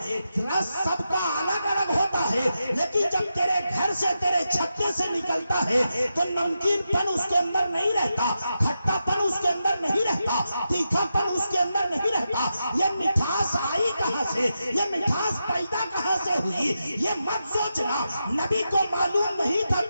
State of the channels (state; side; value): inverted; both; correlation -0.88